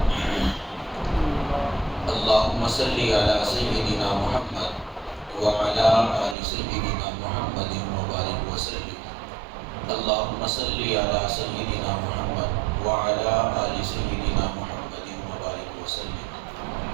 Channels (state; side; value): drops out; left; at 6.4 s